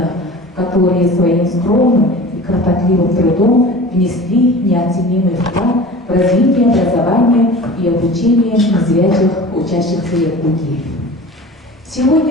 которые своим скромным и кропотливым трудом внесли неоценимый вклад в развитие образования и обучения незрячих учащихся Якутии.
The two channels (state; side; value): normal; both; correlation 0.38